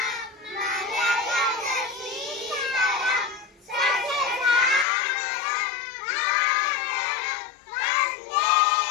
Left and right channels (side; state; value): right; drops out; at 4.9 s